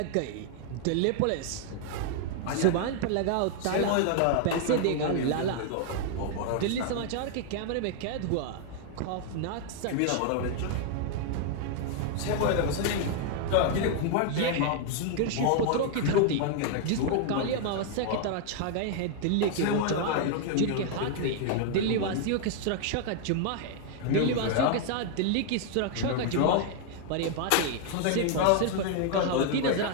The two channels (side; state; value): both; different; correlation 0.00